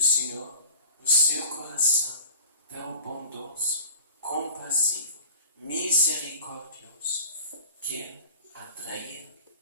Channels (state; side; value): inverted; both; correlation -0.42